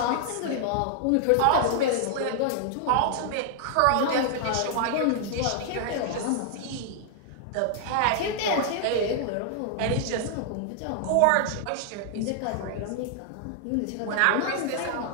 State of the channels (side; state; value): both; different; correlation -0.01